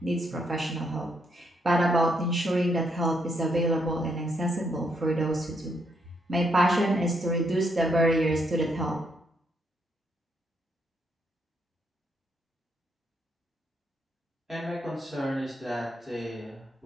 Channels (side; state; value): both; normal; correlation 0.75